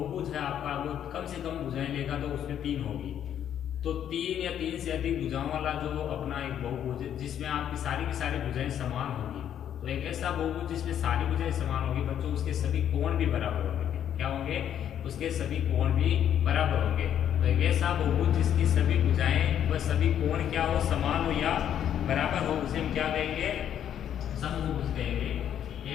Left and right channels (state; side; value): quieter; right; 9.8 dB